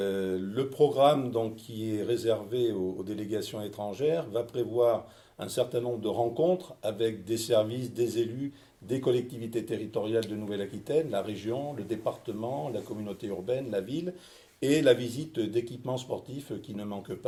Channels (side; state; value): both; identical; correlation 1.00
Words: programme donc, qui est réservé aux délégations étrangères va prévoir un certain nombre de rencontres avec des services, des élus, des collectivités territoriales de Nouvelle-Aquitaine, la région, le département, la communauté urbaine, la ville, et la visite d'équipements sportifs qui ne manquent